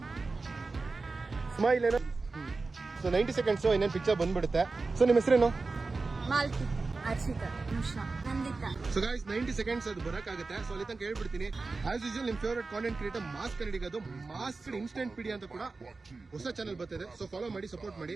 ಸ್ಮೈಲ್ ಏನೋ. ಸೊ 90 ಸೆಕೆಂಡ್ಸ್ ಇನ್ನೇನು ಪಿಕ್ಚರ್ ಬಂದ್ಬಿಡುತ್ತೆ. ಸೊ ನಿಮ್ಮ ಹೆಸರೇನು? Malti, Arshita, Nimisha, Nandita. So guys 90 seconds ಅದು ಬರಕಾಗುತ್ತೆ. ಸೊ ಅಲ್ಲಿ ತನಕ ಹೇಳ್ಬಿಡ್ತೀನಿ. ಆಸ್ ಯೂಶುವಲ್ ನಿಮ್ ಫೇವರೇಟ್ ಕಾಂಟೆಂಟ್ ಕ್ರಿಯೇಟರ್ ಮಾಸ್ ಕನ್ನಡಿಗದು ಮಾಸ್ ಇನ್ಸ್ಟೆಂಟ್ ಪೀಡಿ ಅಂತ ಕೂಡ ಹೊಸ ಚಾನಲ್ ಬರ್ತಿದೆ. ಸೊ ಫಾಲೋ ಮಾಡಿ, ಸಪೋರ್ಟ್ ಮಾಡಿ.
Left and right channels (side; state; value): left; quieter; 3.8 dB